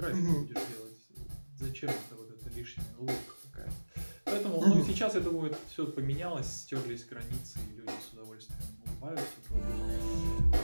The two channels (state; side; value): inverted; both; correlation -1.00